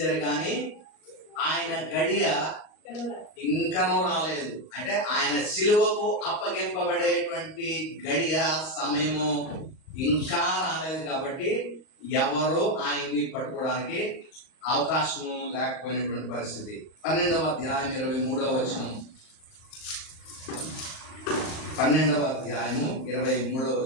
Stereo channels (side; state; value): right; late; 38 ms